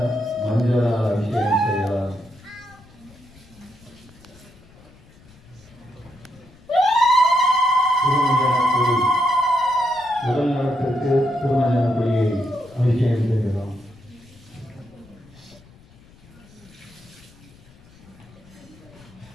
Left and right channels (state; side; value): noise; left; rumble, 25 dB below the sound